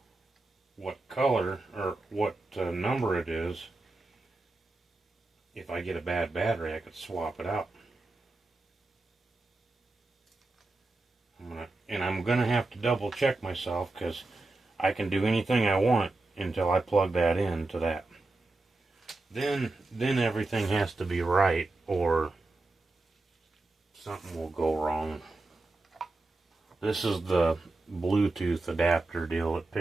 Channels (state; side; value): quieter; left; 3.1 dB